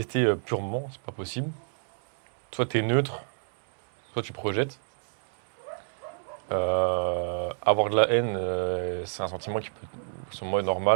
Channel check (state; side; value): silent; left; digital silence